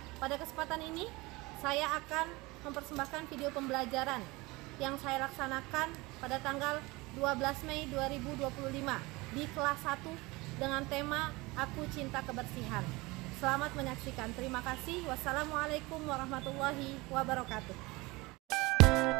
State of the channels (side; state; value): left; quieter; 22.9 dB